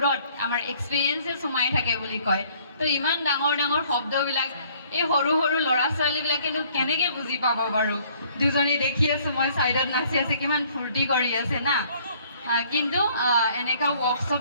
আমাৰ এক্সপিৰিয়েঞ্চেছ সোমাই থাকে বুলি কয়। তো ইমান ডাঙৰ ডাঙৰ শব্দবিলাক এই সৰু সৰু ল'ৰা ছোৱালীবিলাকেনো কেনেকৈ বুজি পাব বাৰু। দুজনী দেখি আছোঁ মই ছাইডত নাচি আছে, কিমান ফূৰ্তি কৰি আছে না। কিন্তু এনেকুৱা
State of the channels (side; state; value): both; inverted; correlation -0.59